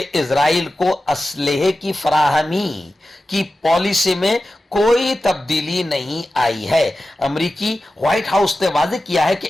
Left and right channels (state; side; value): normal; both; correlation 0.94